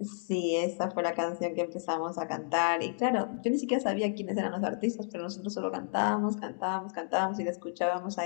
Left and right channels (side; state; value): right; silent; digital silence